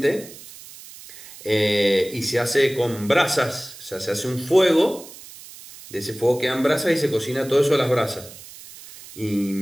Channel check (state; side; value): noise; right; hiss, 17 dB below the sound